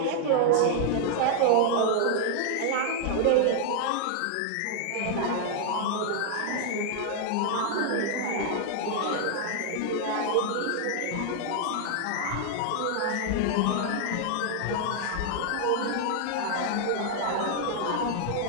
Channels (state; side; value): different; both; correlation 0.00